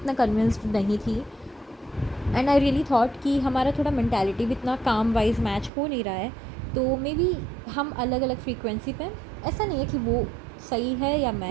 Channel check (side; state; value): left; drops out; at 5.7 s